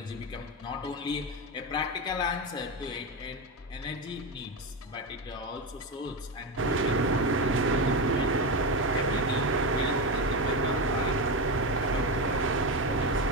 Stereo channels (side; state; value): both; normal; correlation 0.15